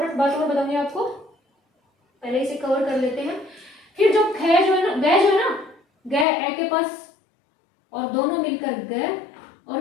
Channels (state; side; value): drops out; right; at 6.2 s